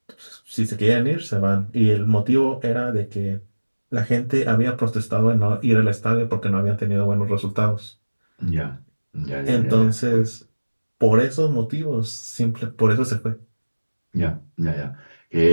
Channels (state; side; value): inverted; both; correlation -1.00